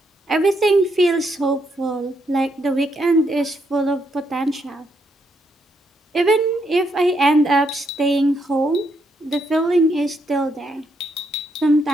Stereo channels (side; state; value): both; normal; correlation 0.77